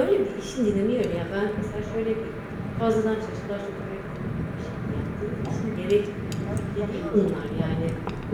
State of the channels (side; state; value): both; identical; correlation 1.00